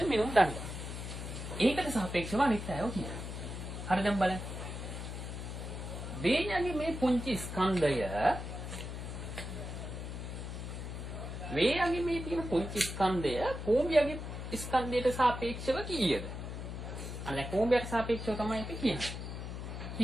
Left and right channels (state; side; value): noise; left; hum, 7 dB below the sound